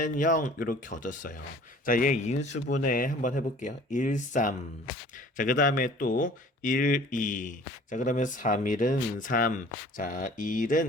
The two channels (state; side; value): normal; both; correlation 0.49